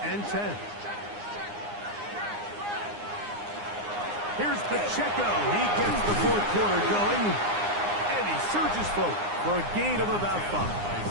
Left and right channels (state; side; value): late; left; 9.7 ms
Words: and 10. Here's Pacheco. He gets the 4th quarter going, and he surges forward for a gain of about 5.